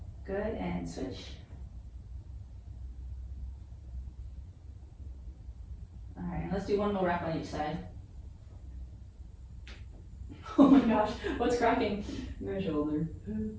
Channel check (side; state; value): both; identical; correlation 1.00